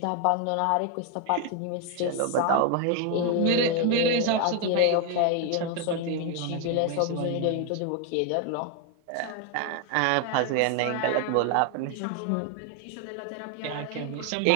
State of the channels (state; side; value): different; both; correlation 0.00